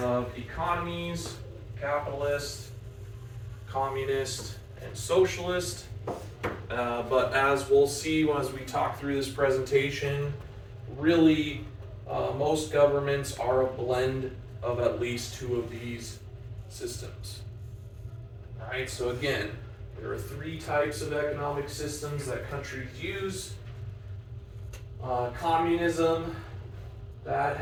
of economies: capitalist, communist, and socialist. But as we'll see as we talk through this presentation, really most governments are a blend of at least two of these systems. Alright, so again, there are three types of economic systems that countries use. Communism, that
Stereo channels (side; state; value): both; identical; correlation 1.00